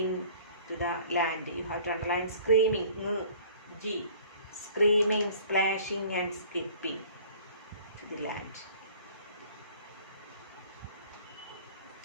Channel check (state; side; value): inverted; both; correlation -0.50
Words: to the land. You have to underline screaming, G. Screaming, splashing and skipping to the land.